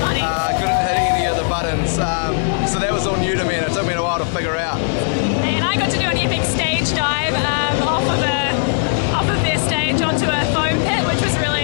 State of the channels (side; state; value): right; silent; digital silence